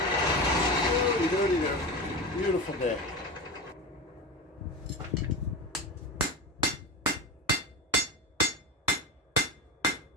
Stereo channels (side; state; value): both; normal; correlation 0.25